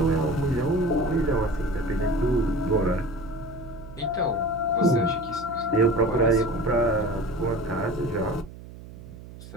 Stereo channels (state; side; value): noise; right; hum, 16 dB below the sound